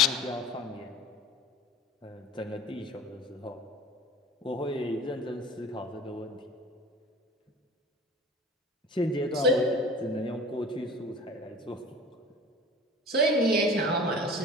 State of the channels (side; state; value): both; normal; correlation 0.41